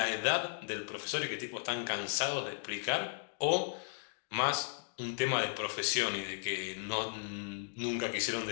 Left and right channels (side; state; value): right; silent; digital silence